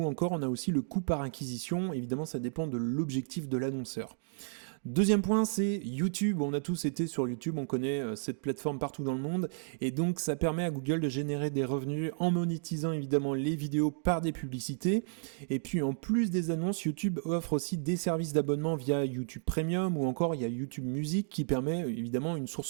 encore on a aussi le coût par acquisition. Évidemment ça dépend de l'objectif de l'annonceur. Deuxième point, c'est YouTube. On a tous été sur YouTube, on connaît cette plateforme partout dans le monde et donc ça permet à Google de générer des revenus en monétisant évidemment les vidéos par des publicités. Et puis en plus des annonces, YouTube offre aussi des services d'abonnement via YouTube Premium ou encore il y a YouTube Music qui permet évidemment une source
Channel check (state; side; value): silent; left; digital silence